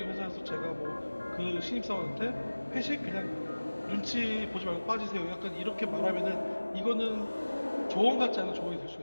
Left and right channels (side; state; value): both; inverted; correlation -1.00